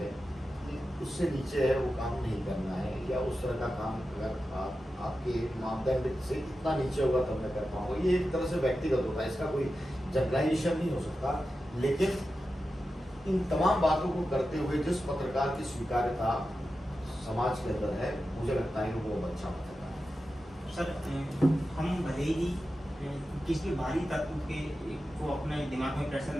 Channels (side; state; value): both; normal; correlation 0.92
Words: कि उससे नीचे है वो काम नहीं करना है, या उस तरह का काम अगर आपके मापदंड से इतना नीचे होगा तब मैं कर पाऊंगा। ये एक तरह से व्यक्तिगत होता है, इसका कोई जनरलाइजेशन नहीं हो सकता। लेकिन इन तमाम बातों को करते हुए जिस पत्रकार की स्वीकार्यता समाज के अंदर है, मुझे लगता है कि वो अच्छा पत्रकार है। सर, हम भले ही किसी बाहरी तत्व के को अपने दिमाग में प्रेशर